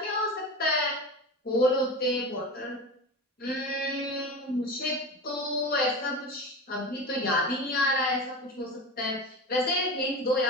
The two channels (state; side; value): normal; both; correlation 0.28